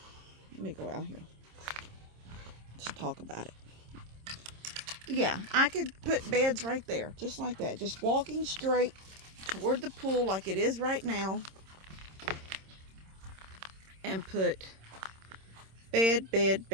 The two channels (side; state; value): left; late; 26 ms